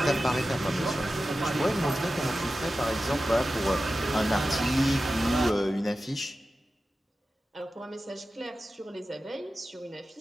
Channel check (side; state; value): both; normal; correlation 0.93